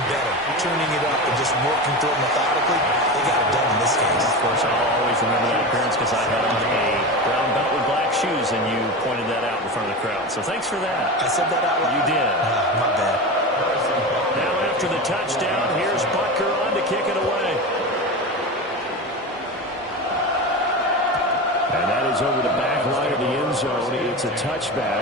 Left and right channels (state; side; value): normal; both; correlation 0.24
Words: better, tuning it up and just working through it methodically. They got it done in this case. Of course, I'll always remember that appearance because I had on a brown belt with black shoes, and you pointed that out in front of the crowd. So thanks for that. I said that out loud. You did. My bad. Now after the touchdown, here's Butker on to kick it away. And that is over the back line of the end zone. It's a